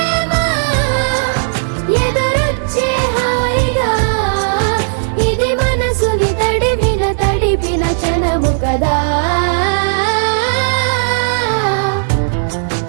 ఎదురొచ్చే హాయిగా ఇది మనసుని తడిపిన క్షణము కదా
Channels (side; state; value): left; silent; digital silence